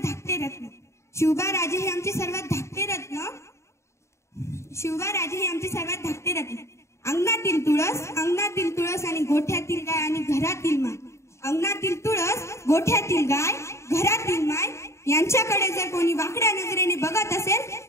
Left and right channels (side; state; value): right; late; 0.14 ms